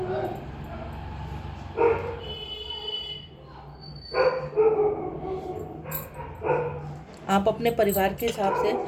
आप अपने परिवार के हिसाब से,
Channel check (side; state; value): both; identical; correlation 1.00